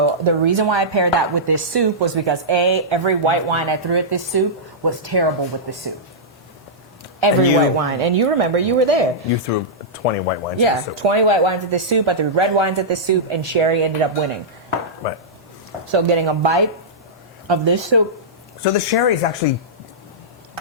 the reason why I paired that with this soup was because every white wine I threw at this soup was terrible with the soup. Every And you- white wine. And you remember, you were there. You threw 20 white wines Yeah, in the soup. 20 white wines at this soup. I threw red wines at this soup, and sherry ended up winning. Right. So getting a bite of this soup. So the sherry is actually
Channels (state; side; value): normal; both; correlation -0.13